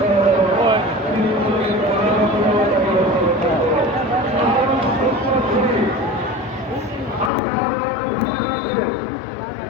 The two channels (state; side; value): drops out; right; at 7.3 s